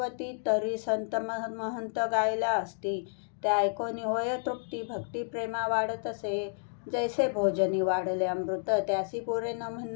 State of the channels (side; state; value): right; silent; digital silence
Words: तरी संत महंत गायला असती, त्या ऐकोनी होय तृप्ती भक्ती प्रेमा वाढत असे, जैसे भोजनी वाढले अमृत त्यासी पुरे न म्हण